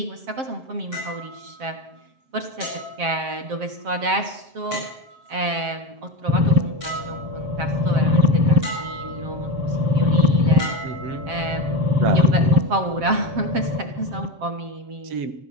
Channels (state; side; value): late; left; 7.5 ms